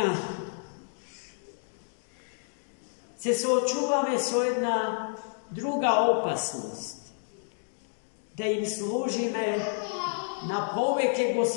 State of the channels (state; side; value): silent; right; digital silence